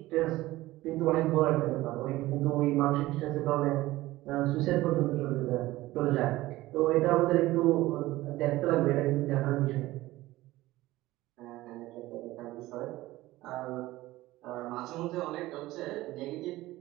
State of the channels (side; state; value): left; quieter; 17.6 dB